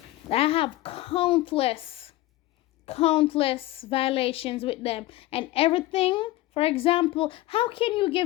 have countless violations with them. And everything, for example, how can you give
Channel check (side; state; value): right; quieter; 17.2 dB